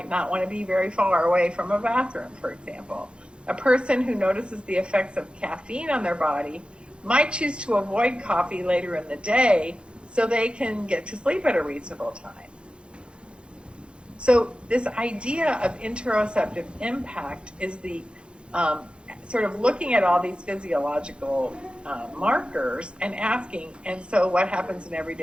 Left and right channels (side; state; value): left; late; 0.055 ms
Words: not want to be very far away from a bathroom, for example. A person who notices the effects of caffeine on their body might choose to avoid coffee later in the day so they can get to sleep at a reasonable time. So this idea of interoceptive impact is the sort of looking at all these physiological markers and asking, and so what happens in